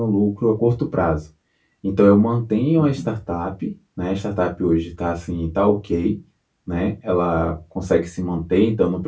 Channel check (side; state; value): both; identical; correlation 1.00